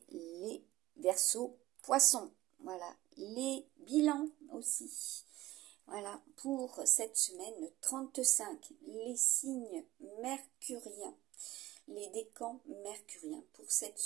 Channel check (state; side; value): quieter; left; 16.9 dB